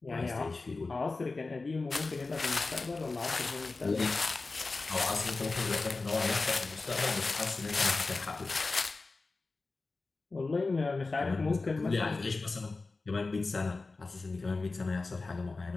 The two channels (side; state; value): right; quieter; 3.7 dB